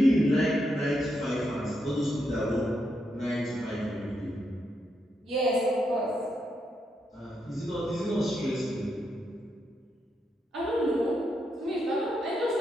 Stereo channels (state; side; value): normal; both; correlation 0.81